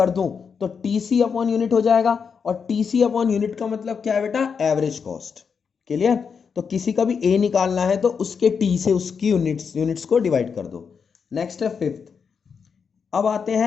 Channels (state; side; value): quieter; right; 6.1 dB